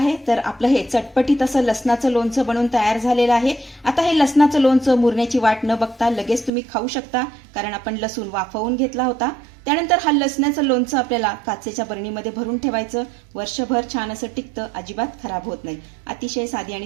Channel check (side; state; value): left; drops out; at 6.5 s